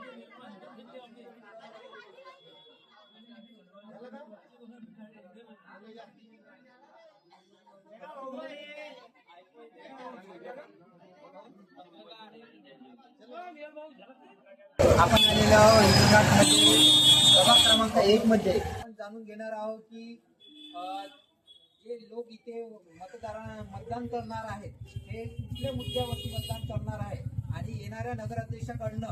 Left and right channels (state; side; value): identical; both; correlation 1.00